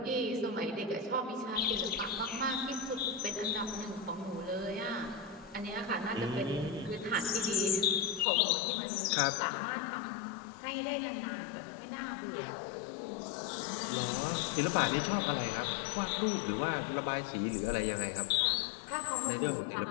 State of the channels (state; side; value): drops out; right; at 8.2 s